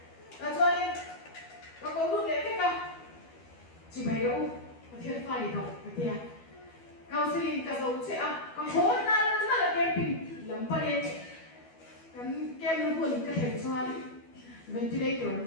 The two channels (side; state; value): right; late; 12 ms